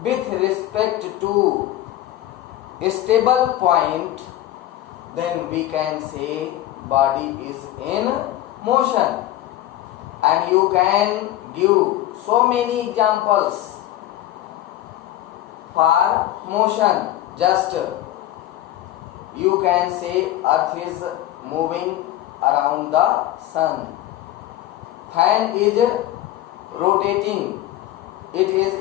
with respect to a stable point, then we can say body is in motion. And you can give so many examples for motion. Just you can say earth is moving around the sun. Fan is rotating, it is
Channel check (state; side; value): quieter; right; 14.0 dB